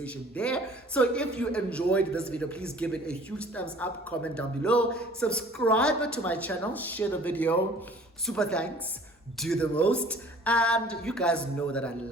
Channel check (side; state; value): both; normal; correlation 0.51